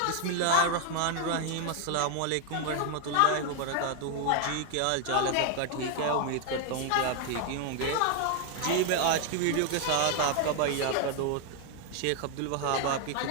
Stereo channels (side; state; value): both; different; correlation 0.00